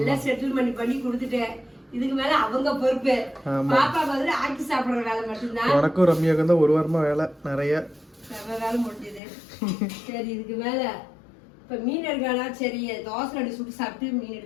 செட்டில்மெண்ட் பண்ணி கொடுத்துட்டேன். இதுக்கு மேல அவங்க பொறுப்பு. பாப்பா பதில் ஆக்கி சாப்பிடுற வேலை மட்டும்தான். உனக்கும் ரம்யாவுக்கும் தான் 1 வாரமா வேலை நிறைய வேலை முடிஞ்சது. சரி இதுக்கு மேல இப்ப மீன் எடுக்கானா? சரி தோசை அடி சுட்டு சாப்பிட்டு மீன்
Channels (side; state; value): right; drops out; at 9.2 s